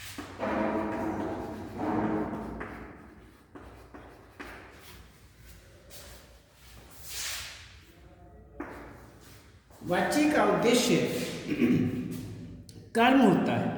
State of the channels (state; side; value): identical; both; correlation 1.00